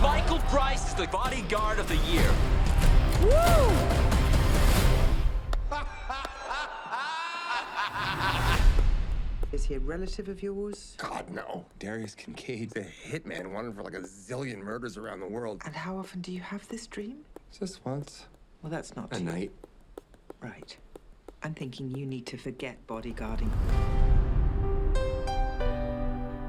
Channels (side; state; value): both; identical; correlation 1.00